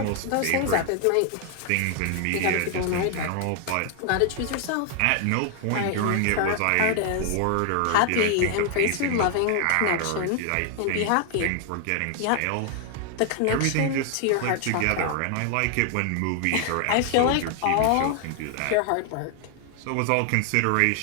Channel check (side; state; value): both; different; correlation 0.00